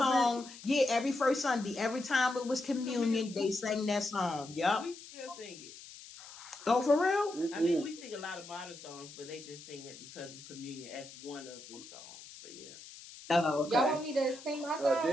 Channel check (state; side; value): noise; left; hiss, 16 dB below the sound